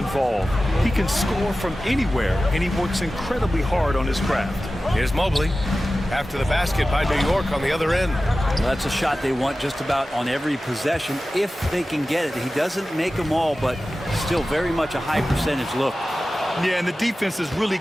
He can score from anywhere, and he works incredibly hard on his craft. Here's Mobley after the basket by New York on the other end. Well, that's a shot they want just about on every possession if they can get it. He doesn't make them all, but still very much a high percentage look. Yeah, and the defense has really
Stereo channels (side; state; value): both; normal; correlation 0.95